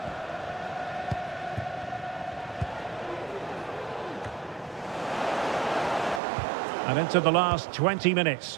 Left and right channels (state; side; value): drops out; left; at 6.2 s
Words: And into the last 20